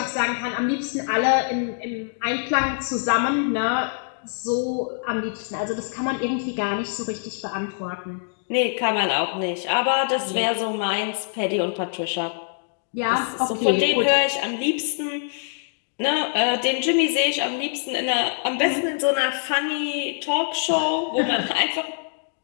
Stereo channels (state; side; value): silent; right; digital silence